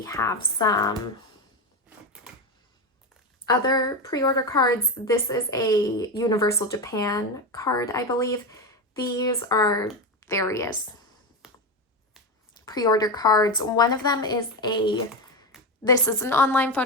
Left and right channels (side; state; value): both; normal; correlation 0.15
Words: have some other pre-order cards. This is a Universal Japan card, I believe. These are various pre-order cards. One of them is this is an online